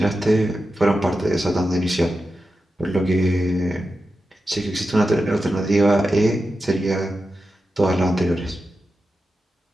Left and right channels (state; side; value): normal; both; correlation 0.91